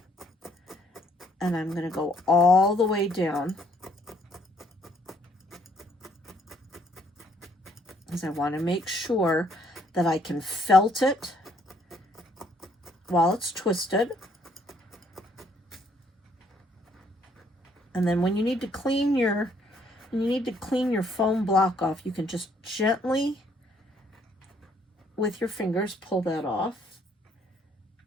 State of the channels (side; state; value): both; normal; correlation 0.66